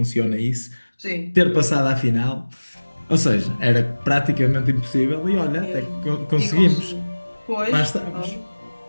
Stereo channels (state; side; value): inverted; both; correlation -1.00